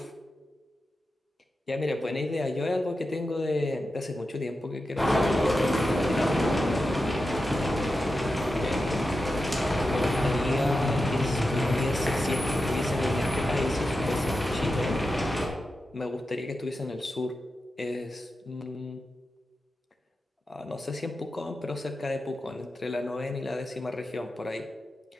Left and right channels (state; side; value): normal; both; correlation 0.90